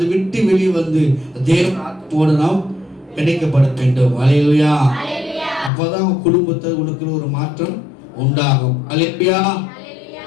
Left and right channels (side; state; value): right; drops out; at 5.7 s